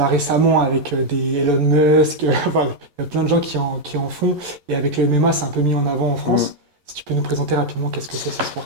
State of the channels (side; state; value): left; late; 11 ms